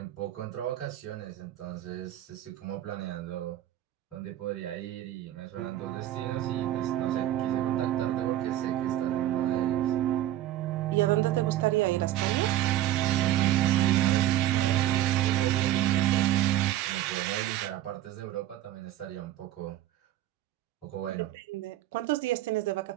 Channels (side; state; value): left; quieter; 13.4 dB